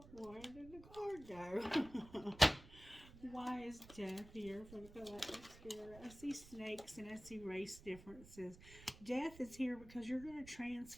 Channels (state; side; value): noise; right; rumble, 18 dB below the sound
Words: Where did the card go? Why is death here for the Galactic Spirit? I see snakes and I see race differences. Death is here because you're going to